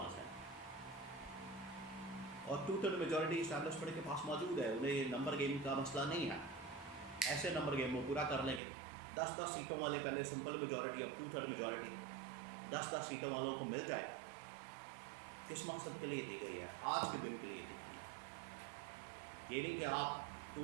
ہے، اور 2/3 میجورٹی اسٹیبلشمنٹ کے پاس موجود ہے۔ انہیں نمبر گیم کا مسئلہ نہیں ہے، ایسے نمبر گیم وہ پورا کر لیں گے۔ 10 سیٹوں والے پہلے سمپل میجورٹی، اب 2/3 میجورٹی، 10 سیٹوں والوں کو مل جائے، کس مقصد کے لیے دی گئی ہے؟ آج کے دن کے لیے دی گئی ہے۔ یہ نہیں کہ آپ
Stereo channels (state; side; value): drops out; left; at 8.6 s